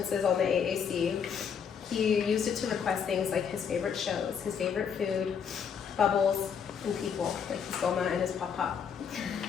on the AAC, he used it to request things like his favorite shows, his favorite food, bubbles, and people, like his Goma and his Pop-Pop.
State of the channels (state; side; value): quieter; right; 7.1 dB